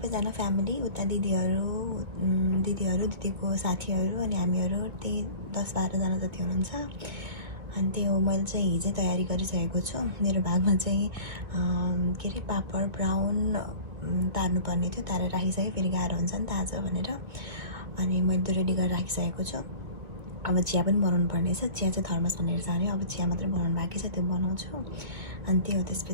फ्यामिली, उता दिदीको साथीहरू अनि हामीहरू त्यही 10-12 जना जति हुनुहुन्छ। अनि त्यही हो, मैले चाहिँ हिजै तयारी गरिसकेको छु। मेरो भागमा चाहिँ के अरे पापड ब्राउन तार्नुपर्ने थियो, तारेर राखिसकेँ, फेरि गाह्रो हुन्छ नि त आज भनेर। अनि मैले त्यो रेडी गरेर राखिसकेको छु। अब चिया पनि बनाउनु पर्ने छ। चिया चाहिँ थर्मस भनेर जाने, अब चिया मात्रै बनाउनु बाँकी छ, त्यो बनाउँछु। अनि त्यो हो।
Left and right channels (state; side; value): late; left; 2.1 ms